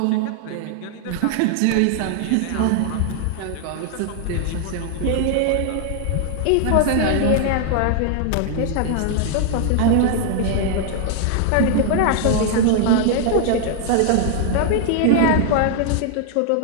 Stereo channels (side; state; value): both; different; correlation 0.00